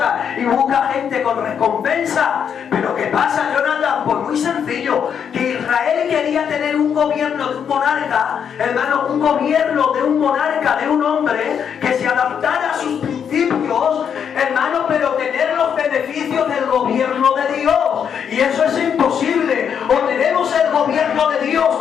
y busca gente con recompensa. Pero ¿qué pasa, Jonathan? Pues muy sencillo, que Israel quería tener un gobierno de un monarca, hermano, un gobierno de un monarca, de un hombre que se adaptara a sus principios, hermano, pero tener los beneficios del gobierno de Dios. Y eso es imposible. O tenemos el gobierno de Dios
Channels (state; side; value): quieter; right; 7.8 dB